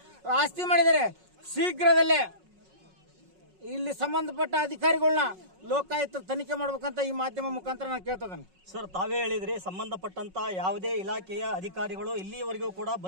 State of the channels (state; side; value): late; left; 5.4 ms